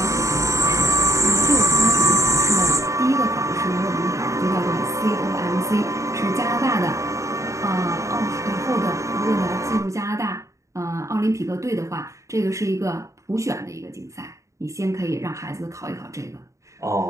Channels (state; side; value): late; left; 0.15 ms